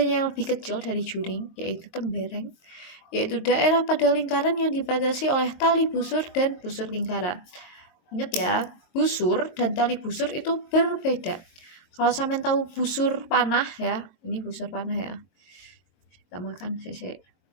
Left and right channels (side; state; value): right; late; 22 ms